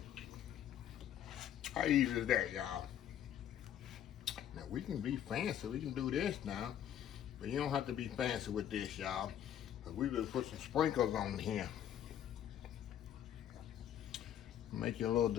How easy is that, y'all? Now we can be fancy, we can do this now. But you don't have to be fancy with this, y'all. But we will put some sprinkles on here. Make your little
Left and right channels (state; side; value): quieter; right; 10.3 dB